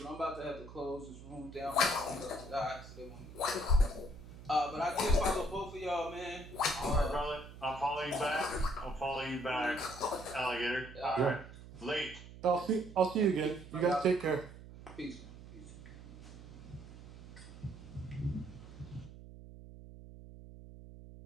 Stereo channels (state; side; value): noise; right; hum, 15 dB below the sound